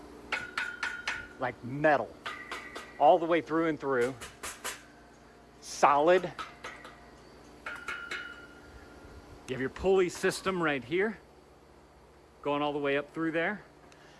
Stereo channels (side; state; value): both; identical; correlation 1.00